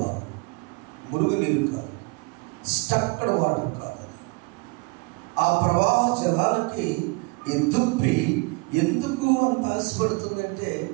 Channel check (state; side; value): quieter; left; 27.5 dB